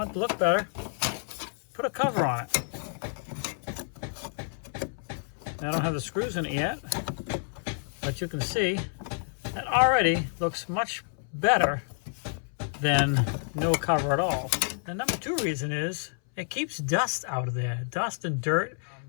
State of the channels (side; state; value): right; silent; 58 dB below the other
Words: it to look better, put a cover on it. I don't have the screws in it yet, but you can see that already looks much better than no cover at all. The number 2 reason is it keeps dust out of there. Dust and dirt